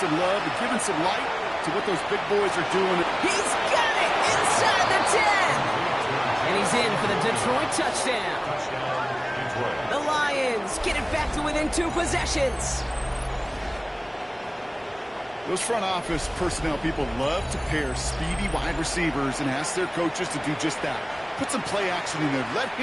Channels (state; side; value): identical; both; correlation 1.00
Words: love and giving some light to what those big boys are doing. He's got it inside the 10. And he's in for the Detroit touchdown. The Lions get it back to within 2 possessions. Those front office personnel people love to pair speedy wide receivers and ask their coaches to do just that. Put some play action in there. Let